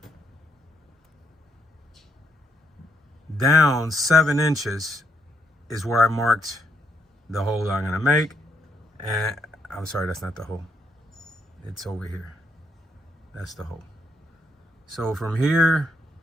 down 7 inches is where I marked the hole I'm gonna make. And I'm sorry, that's not the hole. It's over here. That's the hole. So from here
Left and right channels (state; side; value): normal; both; correlation 0.76